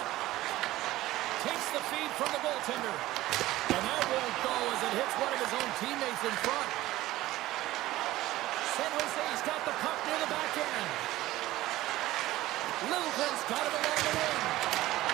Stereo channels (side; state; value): left; quieter; 16.4 dB